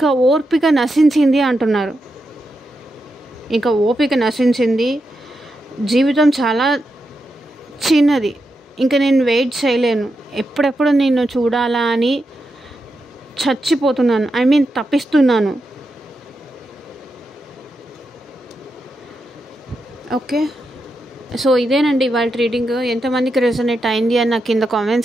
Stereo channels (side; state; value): both; normal; correlation 0.86